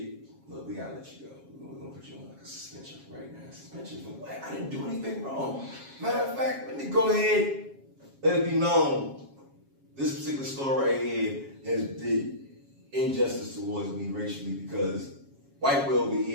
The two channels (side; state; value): left; late; 7.3 ms